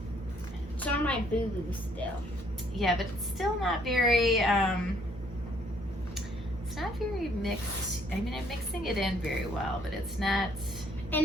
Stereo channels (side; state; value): both; normal; correlation 0.65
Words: It's on my boo-boo still. Yeah, but it's still not very, it's not very mixed. I mean, I'm mixing it in very well, but it's not.